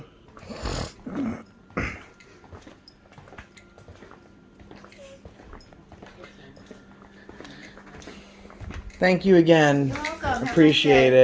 Thank you again. You're welcome. Have a nice Appreciate day.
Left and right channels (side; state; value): both; identical; correlation 1.00